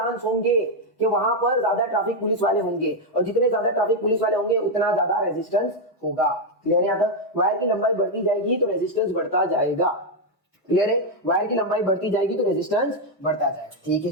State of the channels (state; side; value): normal; both; correlation 0.02